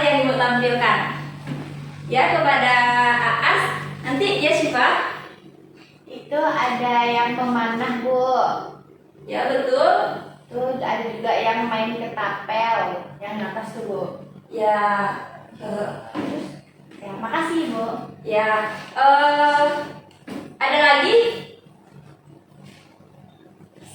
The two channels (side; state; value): both; identical; correlation 1.00